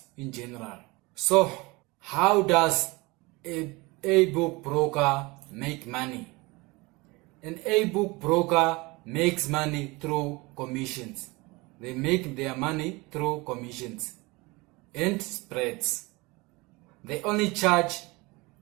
in general. So, how does a book broker make money? An A book broker makes money through commissions. They make their money through commissions and spreads. They only charge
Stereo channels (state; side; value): quieter; left; 24.2 dB